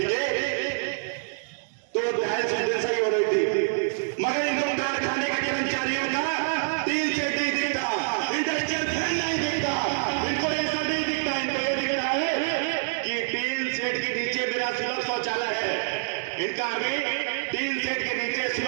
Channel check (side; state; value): left; silent; digital silence